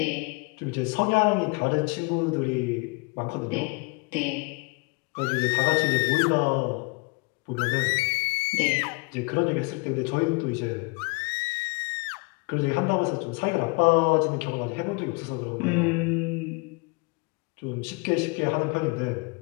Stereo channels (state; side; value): quieter; right; 29.3 dB